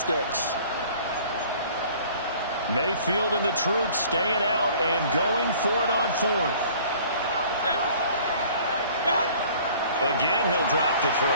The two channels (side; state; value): both; inverted; correlation -0.51